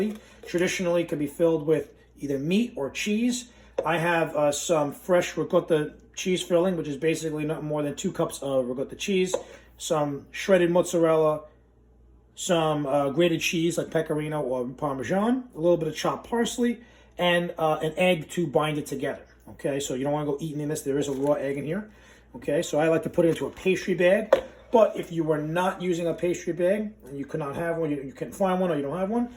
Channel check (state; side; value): identical; both; correlation 1.00